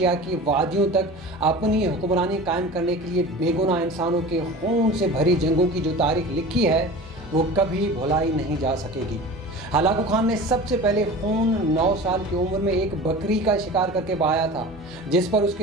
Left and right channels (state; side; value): normal; both; correlation 0.36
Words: की वादियों तक अपनी हुक्मरानी कायम करने के लिए बेगुनाह इंसानों के खून से भरी जंगों की जो तारीख लिखी है वो कभी भुलाई नहीं जा सकेगी। हलाकू खान ने सबसे पहले खून 9 साल की उम्र में एक बकरी का शिकार करके बहाया था, जिस पर